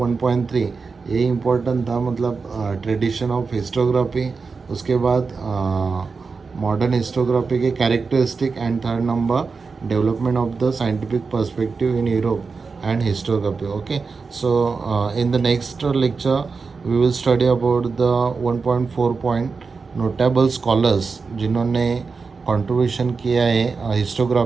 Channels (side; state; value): left; quieter; 4.7 dB